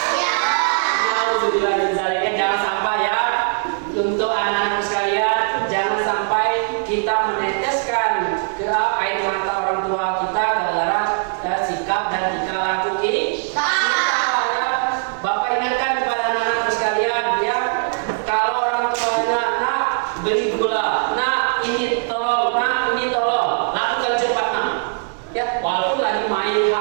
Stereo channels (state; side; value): silent; left; 57 dB below the other